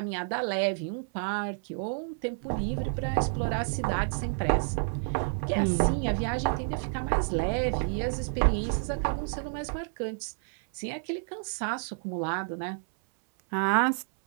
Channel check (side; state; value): left; silent; 58 dB below the other